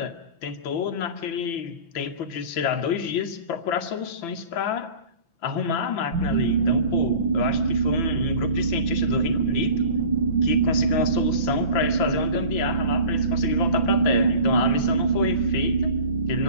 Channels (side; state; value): right; late; 6.0 ms